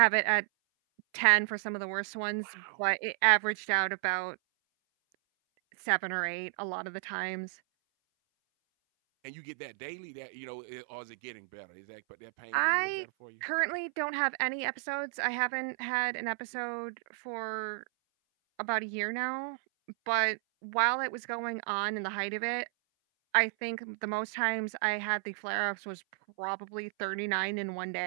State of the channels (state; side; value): silent; left; 56 dB below the other